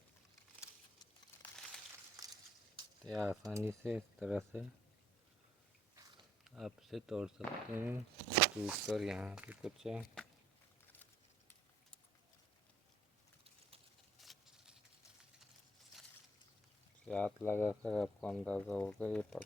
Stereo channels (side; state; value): both; normal; correlation 0.62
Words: तो आसानी से इस तरह से आप इसे तोड़ सकते हैं। टूट कर यहाँ पे कुछ है, हाथ लगा कर आपको अंदाज़ा होगा ये पक